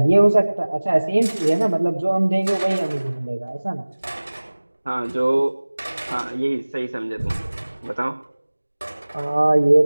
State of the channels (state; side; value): inverted; both; correlation -1.00